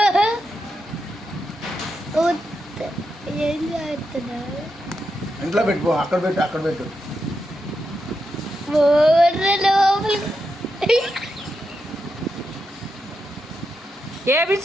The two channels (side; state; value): both; normal; correlation 0.86